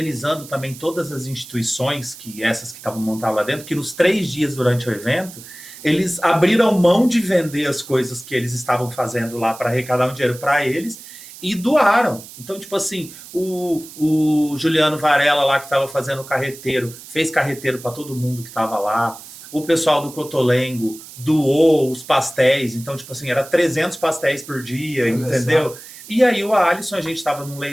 também todas as instituições, essas que estavam montadas lá dentro, que nos 3 dias durante o evento, eles abriram mão de vender as coisas que eles estavam fazendo lá para arrecadar um dinheiro para eles, e doaram. Então, tipo assim, o Juliano Varela lá que estava fazendo o carreteiro, fez carreteiro para todo mundo que estava lá. O pessoal do Cotolengo doou os pastéis. Então, tipo assim, era 300 pastéis por dia, entendeu? E aí o Alisson, a gente estava num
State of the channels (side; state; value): right; noise; hiss, 16 dB below the sound